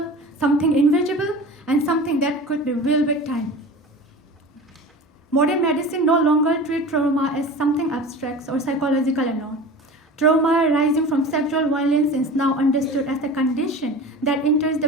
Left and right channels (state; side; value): normal; both; correlation 0.35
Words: something invisible, and something that could be willed with time. Modern medicine no longer treats trauma as something abstract or psychological alone. Trauma arising from sexual violence is now understood as a condition that enters the